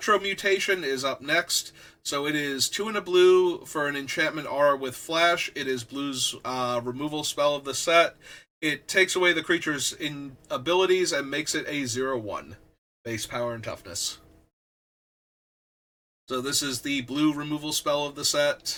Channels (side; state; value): both; identical; correlation 1.00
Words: Mutation is up next. So it is 2 and a blue for an enchantment aura with flash. It is blue's removal spell of the set. It takes away the creature's abilities and makes it a 0/1 base power and toughness. So this is the blue removal spell of the